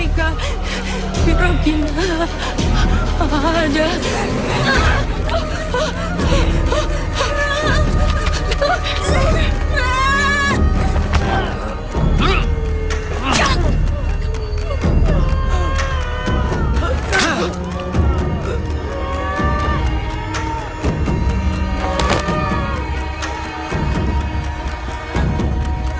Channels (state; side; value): identical; both; correlation 1.00